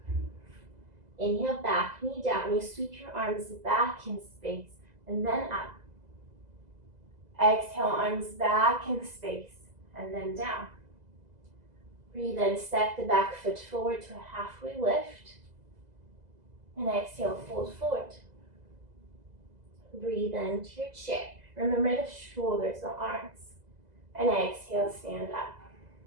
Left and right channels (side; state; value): left; late; 2.0 ms